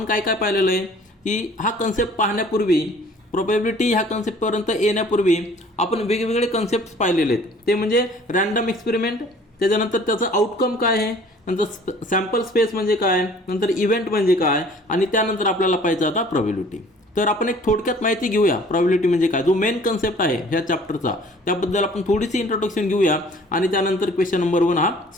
काय काय पाहिलेलं आहे की हा कन्सेप्ट पाहण्यापूर्वी, प्रोबॅबिलिटी ह्या कन्सेप्टपर्यंत येण्यापूर्वी आपण वेगवेगळे कन्सेप्ट पाहिलेले आहेत. ते म्हणजे रँडम एक्सपेरिमेंट, त्याच्यानंतर त्याचं आउटकम काय आहे, नंतर सॅम्पल स्पेस म्हणजे काय, नंतर इव्हेंट म्हणजे काय, आणि त्यानंतर आपल्याला पाहिजे आता प्रोबॅबिलिटी. तर आपण एक थोडक्यात माहिती घेऊया प्रोबॅबिलिटी म्हणजे काय, जो मेन कन्सेप्ट आहे ह्या चॅप्टरचा. त्याबद्दल आपण थोडीशी इंट्रोडक्शन घेऊया आणि त्यानंतर क्वेश्चन नंबर 1 हा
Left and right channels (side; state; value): both; normal; correlation 0.52